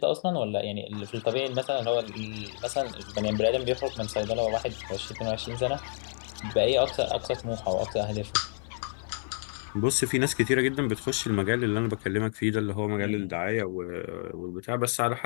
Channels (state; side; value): silent; right; 58 dB below the other